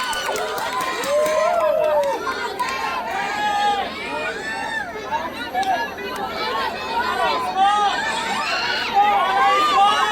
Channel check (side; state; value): both; identical; correlation 1.00